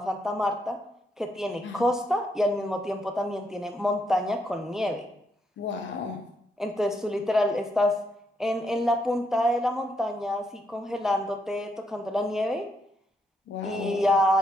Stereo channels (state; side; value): normal; both; correlation 0.77